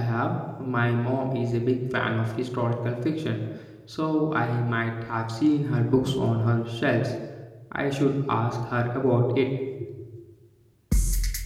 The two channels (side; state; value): both; identical; correlation 1.00